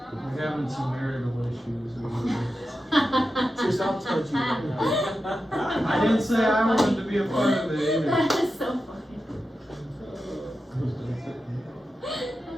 We're having some marital issues. So stop touching me. I didn't say I wanted to be a part of it either. That is so funny.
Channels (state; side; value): normal; both; correlation 0.91